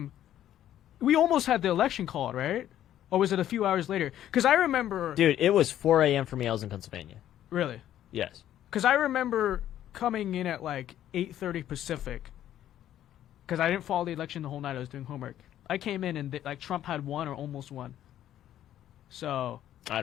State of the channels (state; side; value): quieter; right; 11.7 dB